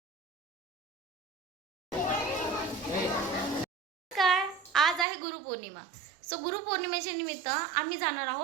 काय. आज आहे गुरुपौर्णिमा. सो गुरुपौर्णिमेच्या निमित्त आम्ही जाणार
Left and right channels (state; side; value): drops out; left; at 5.1 s